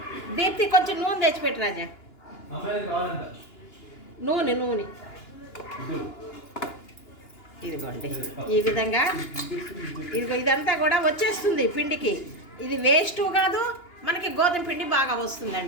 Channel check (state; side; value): late; right; 2.9 ms